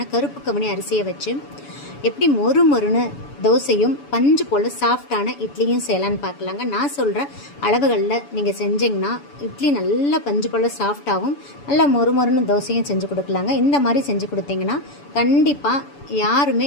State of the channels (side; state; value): right; late; 7.0 ms